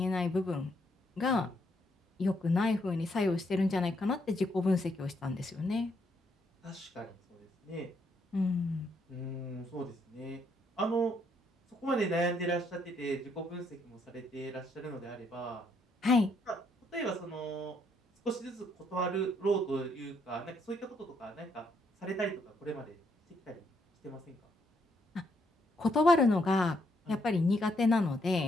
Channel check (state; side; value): normal; both; correlation 0.73